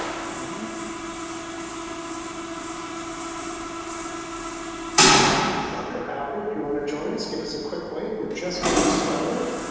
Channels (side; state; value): both; identical; correlation 1.00